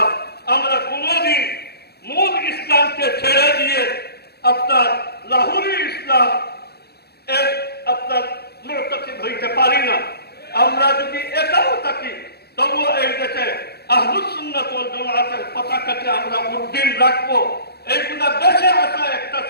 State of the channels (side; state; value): right; late; 0.47 ms